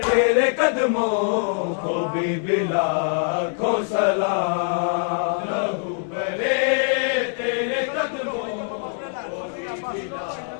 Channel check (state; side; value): silent; right; 59 dB below the other